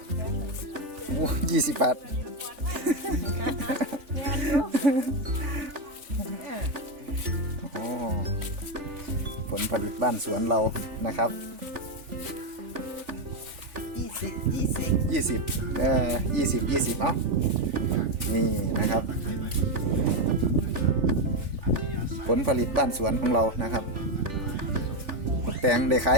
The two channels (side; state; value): left; late; 3.4 ms